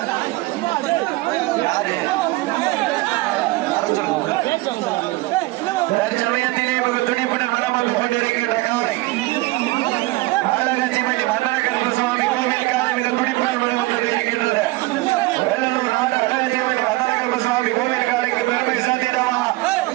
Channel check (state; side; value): quieter; left; 20.7 dB